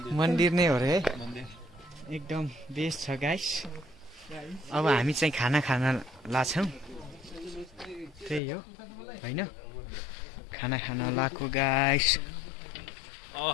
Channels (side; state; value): right; drops out; at 8.4 s